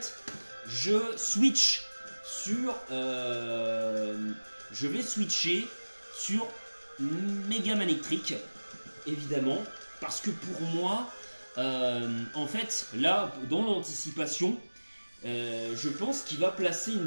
je switch sur... je vais switcher sur Mega Manectric, évidemment, parce que pour moi, en fait, là, dans l'anticipation, je pense qu'il va placer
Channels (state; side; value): inverted; both; correlation -1.00